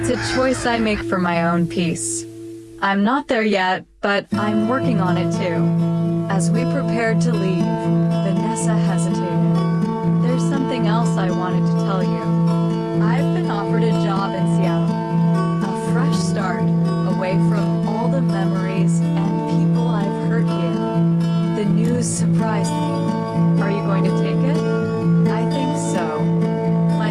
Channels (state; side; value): identical; both; correlation 1.00